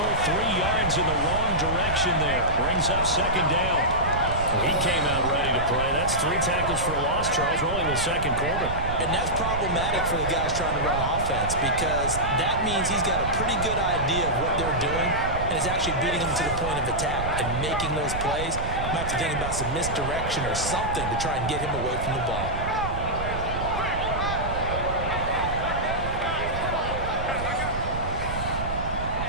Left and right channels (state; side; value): noise; right; rumble, 6 dB below the sound